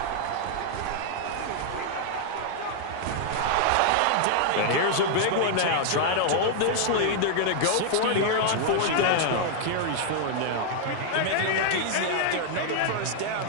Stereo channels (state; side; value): different; both; correlation -0.01